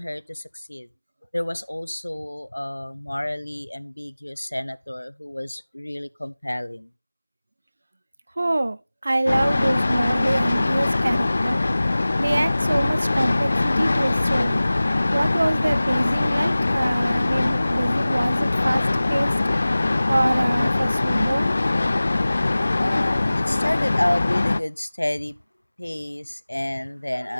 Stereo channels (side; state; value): both; inverted; correlation -0.98